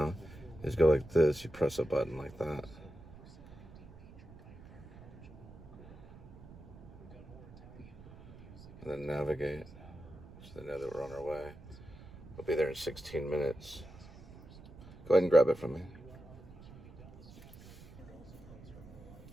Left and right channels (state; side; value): noise; right; rumble, 18 dB below the sound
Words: is go like this. You press a button like that. And then navigate. So they know that we're on our way. We'll be there in 16 minutes. Go ahead and grab it from me.